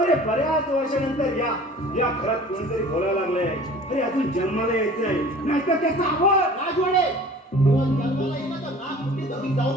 अरे बऱ्याच वर्षानंतर या घरात कोणीतरी बोलायला लागले. अरे अजून जन्माला यायचंय, नाहीतर त्याचा आवाज. राजवाडे, जेव्हा जन्माला येईल ना तर नाक मुठी धरून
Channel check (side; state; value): both; normal; correlation 0.45